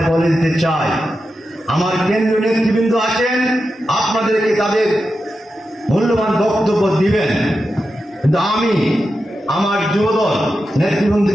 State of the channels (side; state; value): both; normal; correlation 0.90